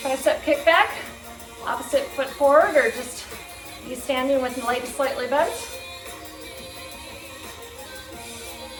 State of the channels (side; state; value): both; identical; correlation 1.00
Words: Tricep kickback. Opposite foot forward, or just you standing with the legs slightly bent.